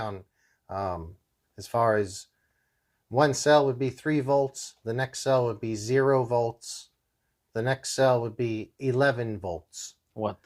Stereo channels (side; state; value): both; identical; correlation 1.00